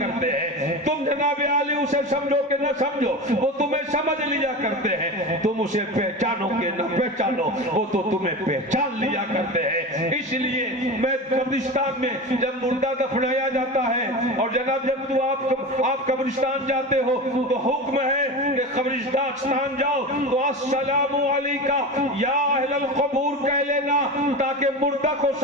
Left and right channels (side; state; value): both; normal; correlation 0.27